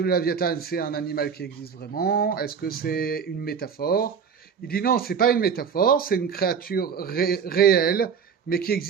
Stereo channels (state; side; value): quieter; left; 6.7 dB